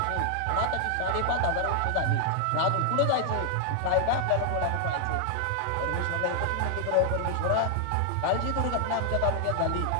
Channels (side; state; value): both; different; correlation 0.00